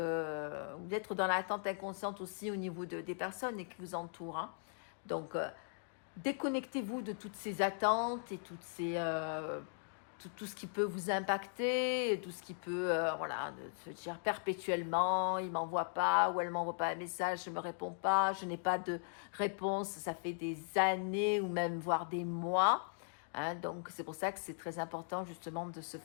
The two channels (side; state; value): right; silent; digital silence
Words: dans l'attente inconsciente aussi au niveau des personnes qui vous entourent, hein. Donc, déconnectez-vous de toutes ces attentes et toutes ces tout ce qui peut vous impacter, tout ce qui peut, voilà, de se dire perpétuellement, il ne m'envoie pas ou elle ne m'envoie pas un message, je ne me réponds pas, je n'ai pas de réponse, ça fait des années ou même voire des mois, hein. Donc c'est pour ça que c'est très important justement de se